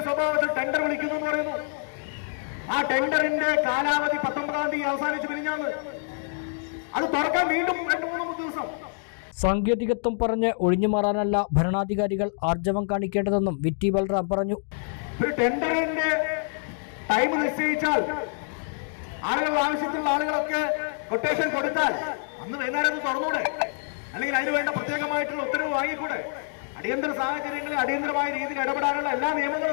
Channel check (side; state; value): right; silent; 61 dB below the other